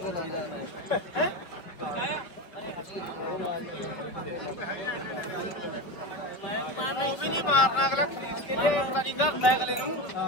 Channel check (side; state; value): right; late; 5.0 ms